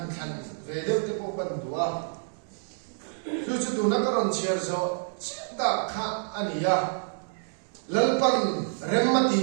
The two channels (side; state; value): left; silent; digital silence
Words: khan ve de te po pan duwa chu chu tu na ka ron chia zo ta kha ania lalpan remmati